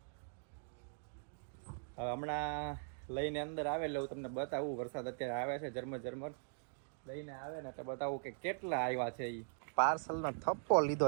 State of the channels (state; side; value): silent; left; digital silence